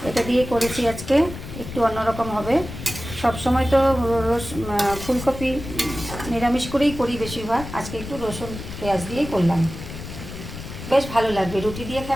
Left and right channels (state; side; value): noise; left; rumble, 10 dB below the sound